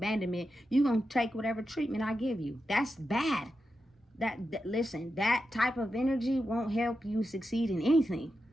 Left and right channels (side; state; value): both; normal; correlation 0.89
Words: you're going to take whatever treatment I give you. That's bad. Listen, that type of energy won't help you succeed in anything.